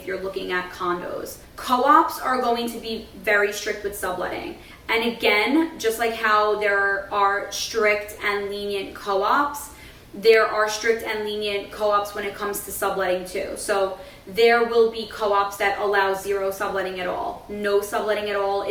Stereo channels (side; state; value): both; identical; correlation 1.00